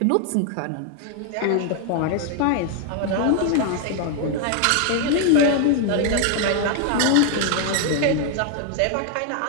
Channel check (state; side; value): different; both; correlation 0.00